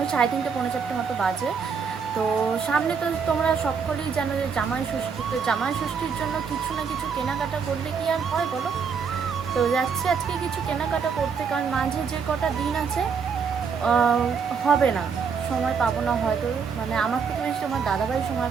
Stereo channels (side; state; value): left; quieter; 6.0 dB